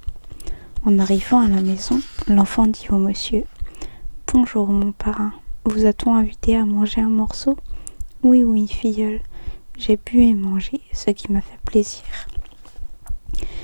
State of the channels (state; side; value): inverted; both; correlation -1.00